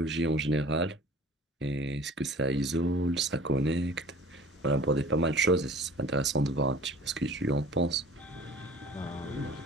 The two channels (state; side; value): normal; both; correlation 0.47